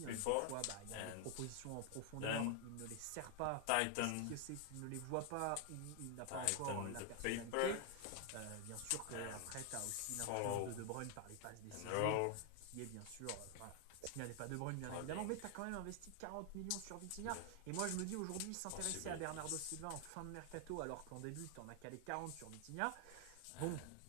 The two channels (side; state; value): both; different; correlation 0.00